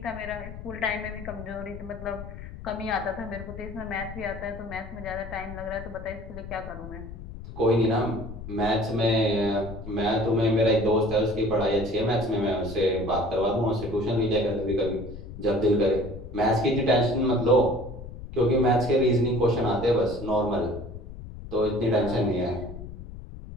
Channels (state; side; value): noise; left; rumble, 12 dB below the sound